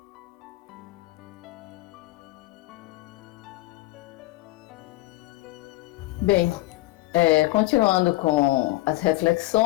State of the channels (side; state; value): right; quieter; 19.3 dB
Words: Bem, continuando com as